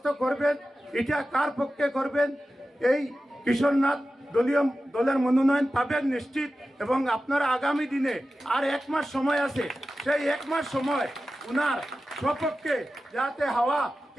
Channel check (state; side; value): normal; both; correlation 0.94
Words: করবেন এটা কার পক্ষে করবেন। এই কিশোরনাথ দলের মনোনয়ন পাবেন নিশ্চিত, এবং আপনারা আগামী দিনে আর 1 মাস সময় আছে, সেই 1 মাস সময় উনার সপক্ষে যাতে হাওয়া